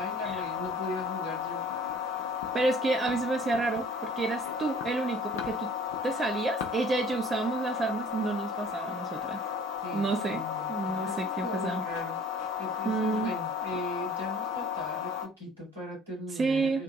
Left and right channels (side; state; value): both; normal; correlation 0.51